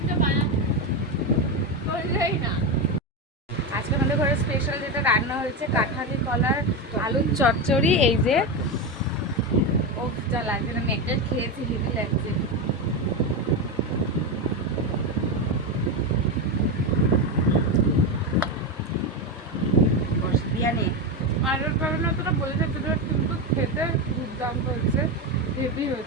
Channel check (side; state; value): both; normal; correlation 0.14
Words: বানাতে, বললেই না। আজকে আমাদের ঘরে স্পেশাল যেটা রান্না হয়েছে, কাঁঠালি কলার আলুর চচ্চড়ি। এই যে ও যা লাগছে, আমি একটা খেয়েছি, হেভি লাগছে। বিরিয়ানি। আলুর কারণে তোরা বলেছে, কিন্তু খেতে দুর্দান্ত হয়েছে, হেভি